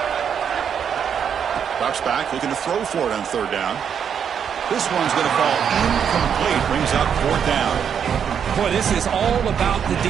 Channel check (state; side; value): quieter; left; 7.8 dB